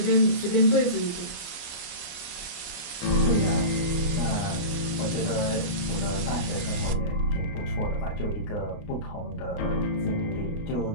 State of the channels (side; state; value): right; late; 29 ms